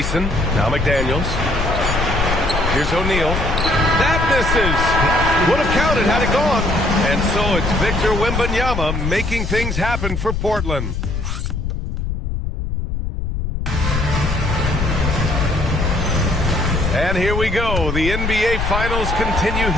Now McDaniels. Here's O'Neal. That misses. Would have counted had it gone. And so it's Victor Wembanyama making things happen for Portland. And here we go. The NBA Finals continue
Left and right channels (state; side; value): noise; left; rumble, 3 dB below the sound